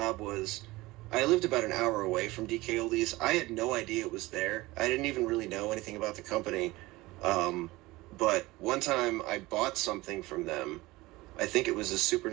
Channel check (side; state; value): left; quieter; 20.2 dB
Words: was I lived about an hour away from DKOldies. I had no idea it was there. I didn't even really know anything about the company. But one time I bought something from them. I think it was a Super